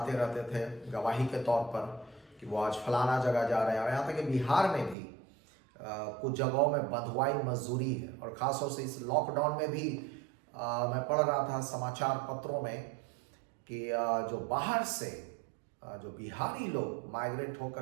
रहते थे गवाही के तौर पर कि वो आज फलाना जगह जा रहे हैं। और यहाँ तक कि बिहार में भी कुछ जगहों में बंधुआई मजदूरी है, और ख़ासतौर से इस लॉकडाउन में भी मैं पढ़ रहा था समाचार पत्रों में कि जो बाहर से जो बिहारी लोग माइग्रेट होकर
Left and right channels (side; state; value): left; drops out; at 5.0 s